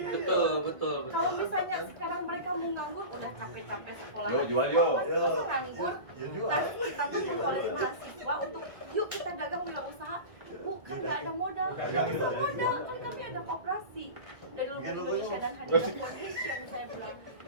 Betul. Kalau misalnya sekarang mereka mau nganggur, udah capek-capek sekolah. Jual. Masa nganggur? Kita tuh mengkolek mahasiswa untuk yuk kita dagang wirausaha. Bukan nggak ada modal, nggak usah modal, kan kami ada koperasi dari Lumbung Indonesia dan Hadida Foundation. Saya bilang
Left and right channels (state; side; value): late; left; 1.9 ms